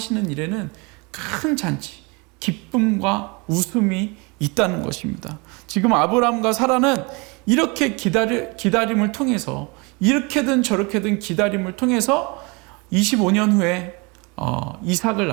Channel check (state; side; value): quieter; left; 28.7 dB